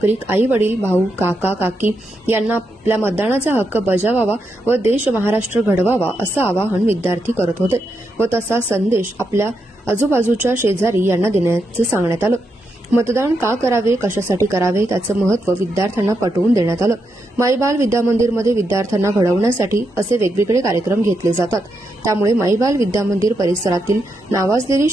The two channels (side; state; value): both; normal; correlation 0.83